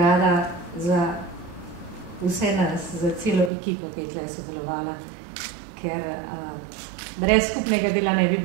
za vse nas, za celo ekipo, ki je tukaj sodelovala, ker brez skupnega dela ne bi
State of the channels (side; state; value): left; drops out; at 3.5 s